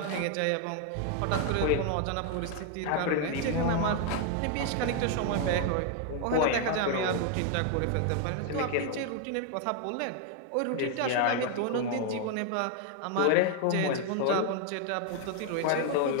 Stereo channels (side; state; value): both; different; correlation 0.00